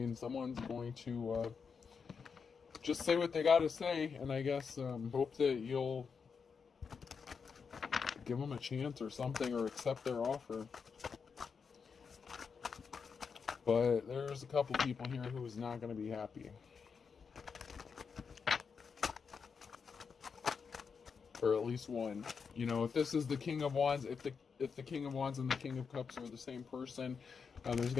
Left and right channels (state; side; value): quieter; right; 5.8 dB